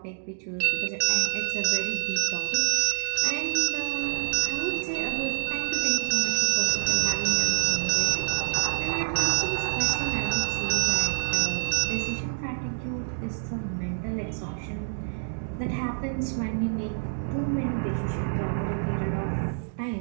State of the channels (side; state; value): left; silent; digital silence